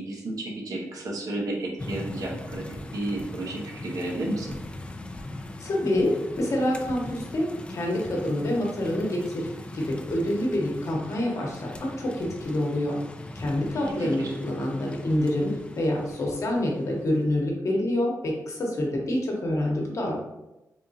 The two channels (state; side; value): normal; both; correlation 0.87